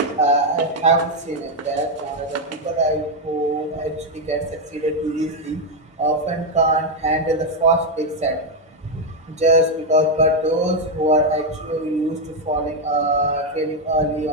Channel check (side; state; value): both; normal; correlation 0.03